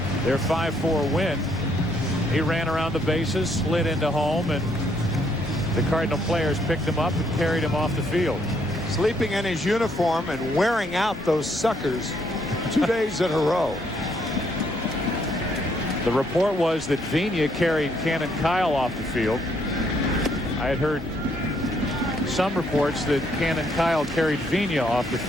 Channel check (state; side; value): normal; both; correlation 0.71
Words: their 5-4 win, he ran around the bases, slid into home, and the Cardinal players picked him up and carried him off the field. Sleeping in his uniform and wearing out those suckers 2 days in a row. The report was that Vina carried Cannon Kyle off the field. I had heard some reports that Cannon Kyle carried Vina off the